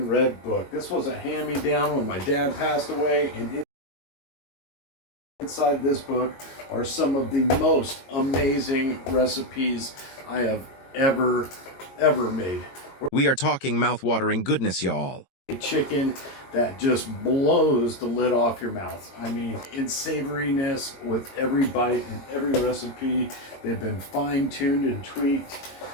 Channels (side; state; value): right; late; 22 ms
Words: red book. This was a hand-me-down when my dad passed away, and inside this book are some of the most amazing recipes I have ever made. We are talking mouth-watering goodness, y'all. A chicken that just blows the lid off your mouth. I mean, in savoriness with every bite and every recipe. They've been fine-tuned and tweaked.